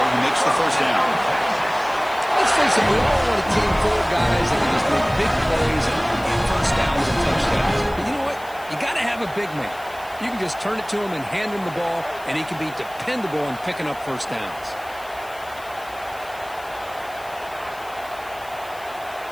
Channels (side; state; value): left; noise; hiss, 21 dB below the sound